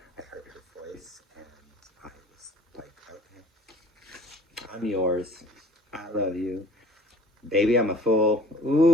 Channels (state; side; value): normal; both; correlation 0.51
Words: I heard her voice and I was like, okay, I'm yours. I love you. Baby, I'm a fool.